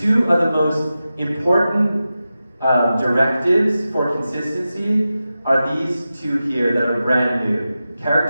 of the most important directives for consistency are these two here that are brand new:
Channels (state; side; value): inverted; both; correlation -0.93